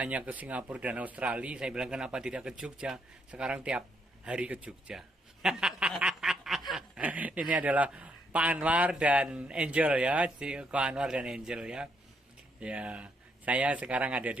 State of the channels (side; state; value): both; normal; correlation 0.74